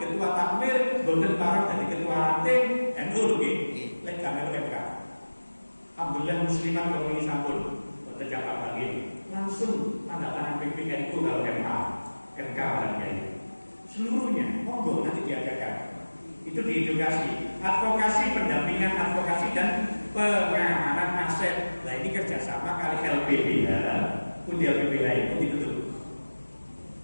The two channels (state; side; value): inverted; both; correlation -1.00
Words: ketua takmir, boten parang dari ketua ranting NU nggih. Lek kamel MK. Alhamdulillah muslimat kalau ini sampun boten jamak lagi. Langsung tanda tangan PPNU kalau MA, NK dan seluruhnya monggo nanti diadakan. Itu diedukasi, advokasi, pendampingan advokasi dan pengamanan aset. Nah ini kerjasama kali LPBH, pun di LPBH itu ditutup.